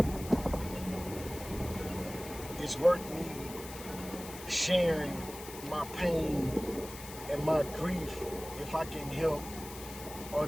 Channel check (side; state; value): left; noise; hiss, 13 dB below the sound